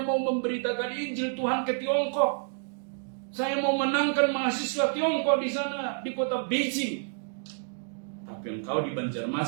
memberitakan Injil Tuhan ke Tiongkok. Saya mau menangkan mahasiswa Tiongkok di sana, di kota Beijing. Tapi engkau di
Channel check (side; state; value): left; silent; digital silence